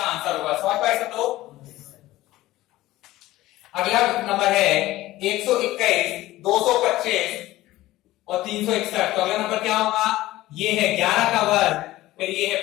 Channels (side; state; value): right; quieter; 16.7 dB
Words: आंसर होगा। समझ पाए सब लोग? अगला नंबर है 121 225 और 361। तो अगला नंबर क्या होगा, ये है 11 का वर्ग, फिर ये है